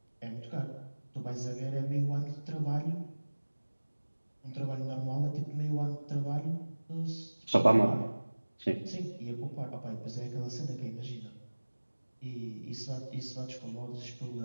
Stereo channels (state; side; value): inverted; both; correlation -1.00